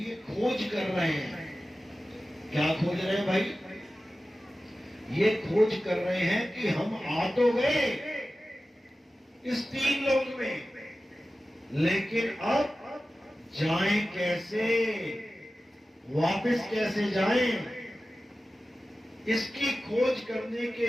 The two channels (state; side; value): normal; both; correlation 0.95